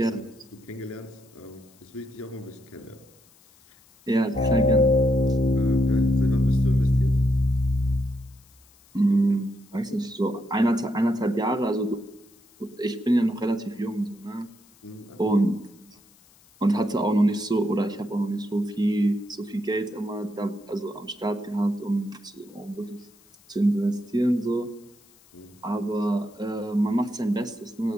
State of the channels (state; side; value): noise; left; hiss, 29 dB below the sound